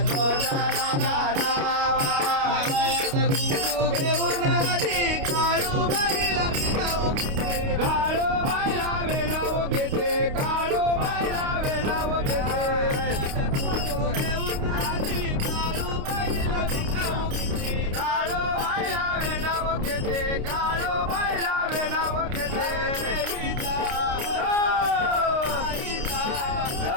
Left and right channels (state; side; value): late; left; 29 ms